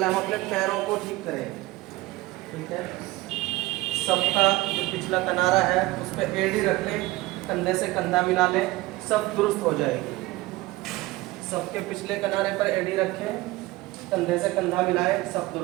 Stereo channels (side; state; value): left; quieter; 19.5 dB